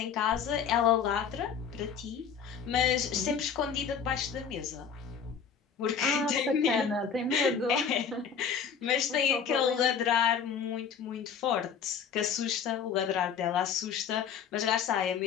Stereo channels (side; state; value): right; quieter; 7.0 dB